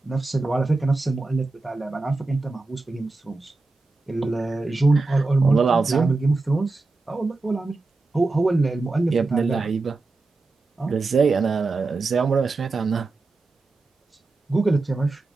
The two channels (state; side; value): quieter; left; 3.5 dB